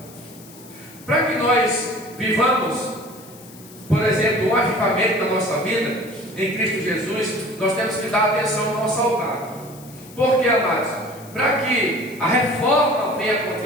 para que nós vivamos, por exemplo, um avivamento na nossa vida, em Cristo Jesus, nós temos que dar atenção ao nosso altar. Por que, amados? Para que a reforma venha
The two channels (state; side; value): noise; left; hiss, 21 dB below the sound